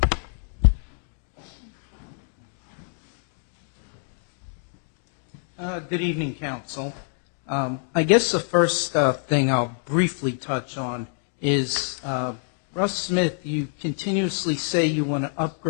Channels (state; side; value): silent; right; 61 dB below the other